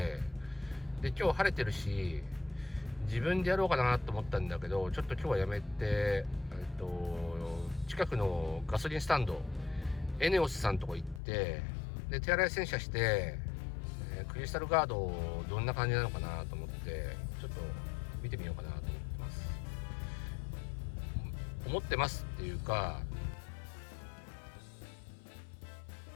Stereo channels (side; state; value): right; drops out; at 11.2 s